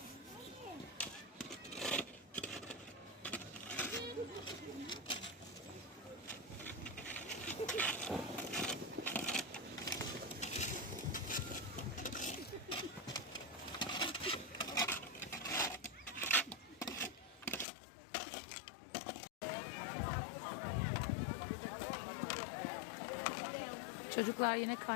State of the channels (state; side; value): drops out; right; at 17.7 s